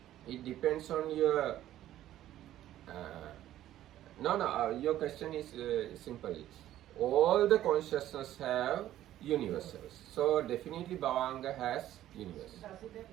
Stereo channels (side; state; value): left; quieter; 13.0 dB